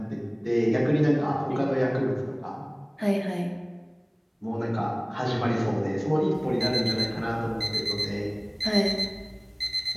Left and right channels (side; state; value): both; identical; correlation 1.00